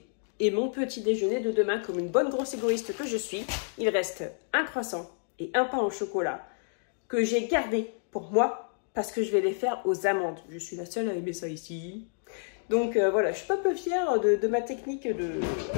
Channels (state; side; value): silent; right; 58 dB below the other